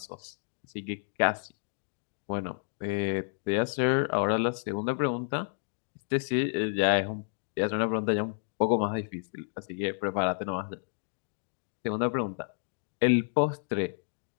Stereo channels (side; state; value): right; silent; digital silence